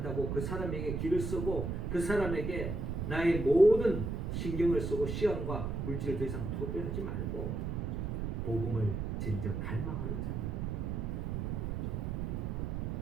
그 사람에게 길을 쓰고 그 사람에게 나의 모든 신경을 쓰고 시간과 물질을 더 이상 투표하지 말고 복음을 진정 갈망하는 자,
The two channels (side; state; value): right; noise; rumble, 2 dB below the sound